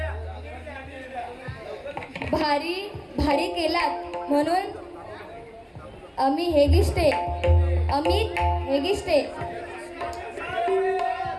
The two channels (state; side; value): identical; both; correlation 1.00